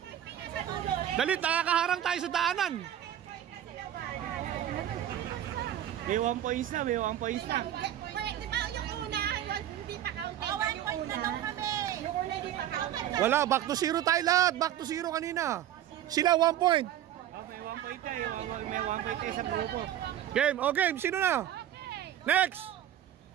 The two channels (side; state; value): left; quieter; 11.5 dB